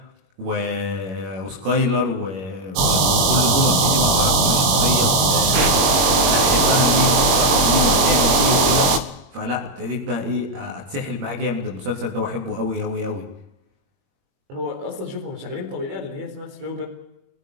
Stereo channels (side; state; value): left; late; 22 ms